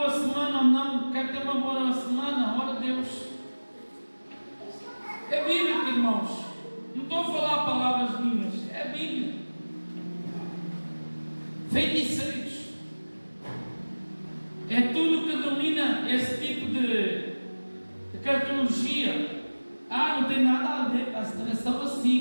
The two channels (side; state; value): both; inverted; correlation -1.00